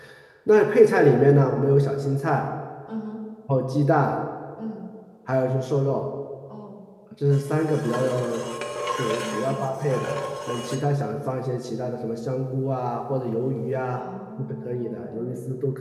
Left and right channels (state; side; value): identical; both; correlation 1.00